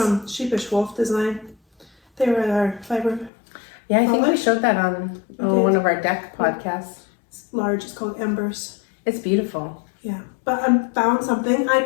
Sheepish Wolf Design. They were at our fiber. Yeah, I think we Foliage? showed that on We did. one of our deck podcasts. It's large. It's called Embers. It's beautiful. Yeah. But I found something I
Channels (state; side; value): drops out; right; at 3.3 s